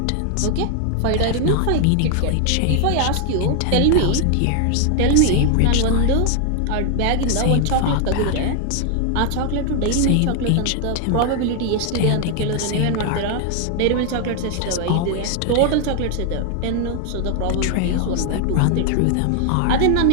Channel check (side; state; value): both; different; correlation 0.00